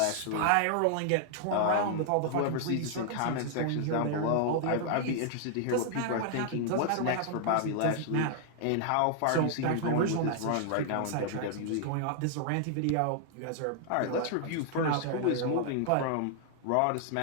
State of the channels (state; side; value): different; both; correlation 0.00